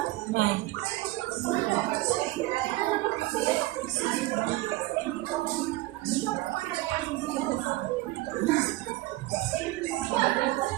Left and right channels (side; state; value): left; quieter; 18.7 dB